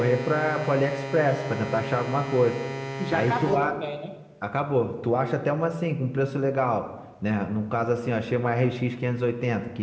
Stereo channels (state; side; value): identical; both; correlation 1.00